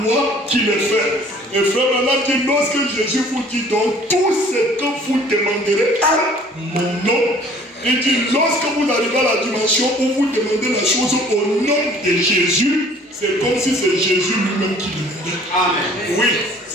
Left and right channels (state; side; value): normal; both; correlation 0.53